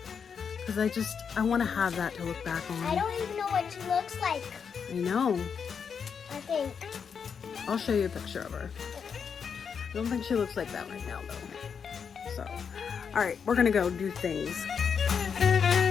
because I want to have that to look back on. I don't even know what she looks like. I know. I think. I'll show you a picture of her. I don't think she looks like that right now though. So, all right, we're gonna go do things.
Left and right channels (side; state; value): right; quieter; 6.6 dB